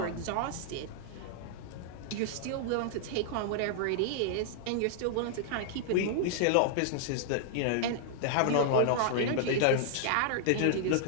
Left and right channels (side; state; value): both; different; correlation -0.01